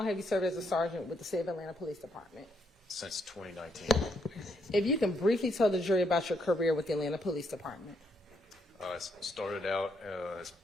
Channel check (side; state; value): both; normal; correlation 0.75